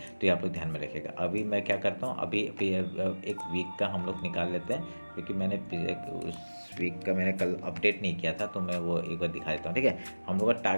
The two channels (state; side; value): inverted; both; correlation -1.00